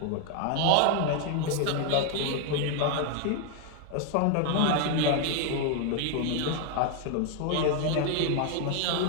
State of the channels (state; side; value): different; both; correlation 0.01